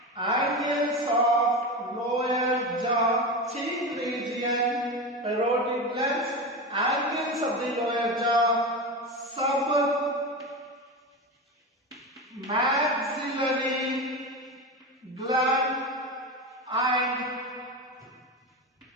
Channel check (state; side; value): normal; both; correlation 0.22